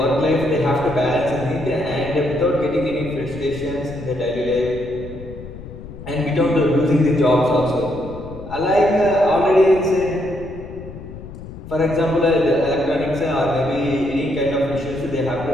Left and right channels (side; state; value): left; noise; rumble, 13 dB below the sound